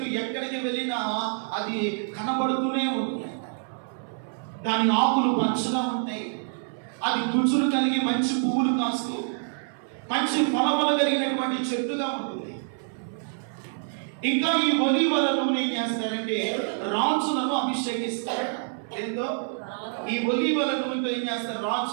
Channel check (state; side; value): silent; left; 60 dB below the other